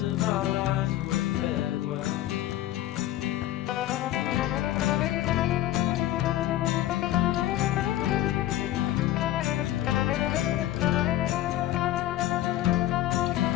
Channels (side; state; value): right; quieter; 13.8 dB